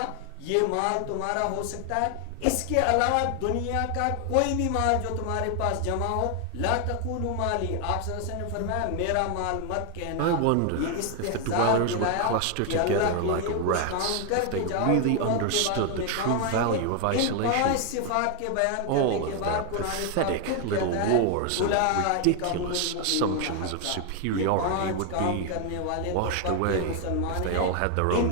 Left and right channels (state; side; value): different; both; correlation 0.01